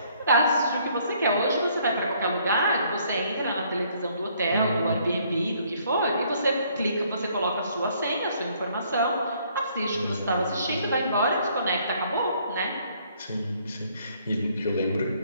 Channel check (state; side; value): inverted; both; correlation -0.64